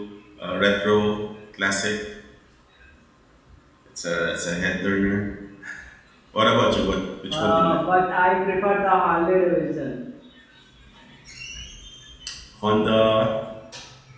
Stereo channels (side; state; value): both; identical; correlation 1.00